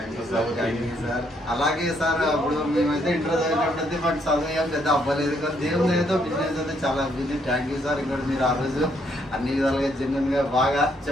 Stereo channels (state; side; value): normal; both; correlation 0.72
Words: you sir. అలాగే సార్, అప్పుడు మేమైతే ఇంటర్ చదివినప్పుడైతే మాకు చదువు ఏం పెద్ద అవ్వలేదు, కానీ దేవుని ఏదో బిజినెస్ అయితే చాలా అవ్వింది. Thank you sir. ఇక్కడ మీరు ఆ రోజు అన్ని విధాలుగా జెన్యున్ గా బాగా